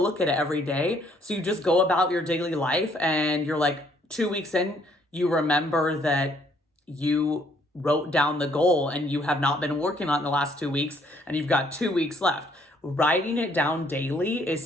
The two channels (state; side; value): normal; both; correlation 0.66